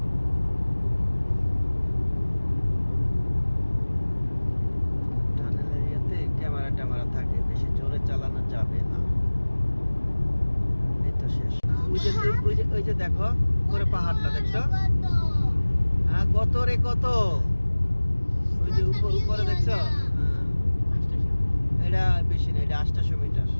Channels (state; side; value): inverted; both; correlation -1.00